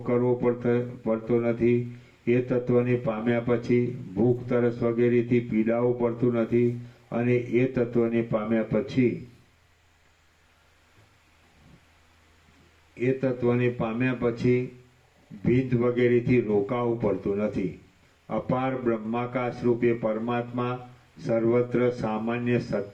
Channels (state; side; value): identical; both; correlation 1.00